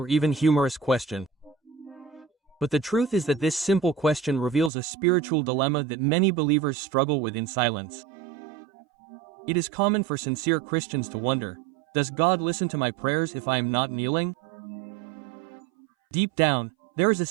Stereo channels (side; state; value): left; drops out; at 4.7 s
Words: even humorous question, but the truth is that this simple question reveals a spiritual dilemma that many believers struggle with in silence. It is common for sincere Christians to wonder, does God listen to my prayers if I am not kneeling? Deep down, there is a